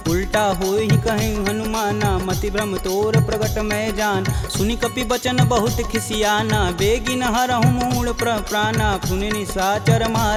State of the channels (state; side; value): identical; both; correlation 1.00